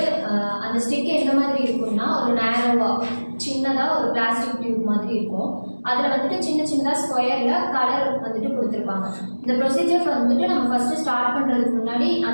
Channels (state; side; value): inverted; both; correlation -1.00